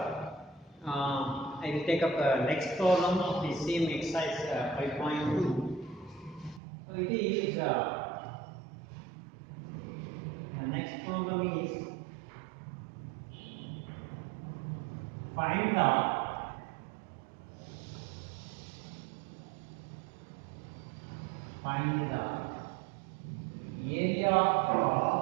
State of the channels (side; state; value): left; drops out; at 6.6 s